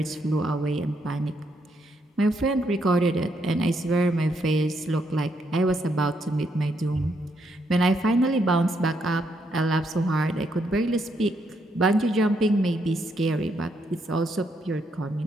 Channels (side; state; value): both; normal; correlation 0.76